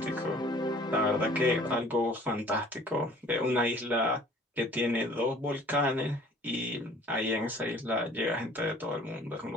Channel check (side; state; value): both; normal; correlation 0.51